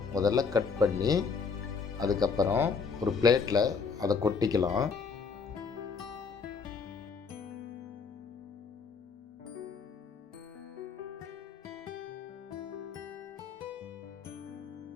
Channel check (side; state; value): right; quieter; 5.4 dB